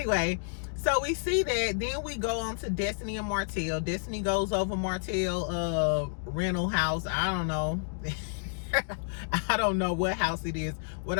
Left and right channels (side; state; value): right; silent; digital silence